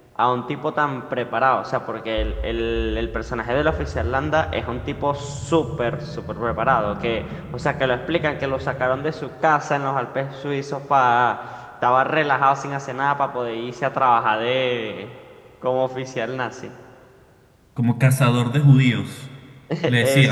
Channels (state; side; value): identical; both; correlation 1.00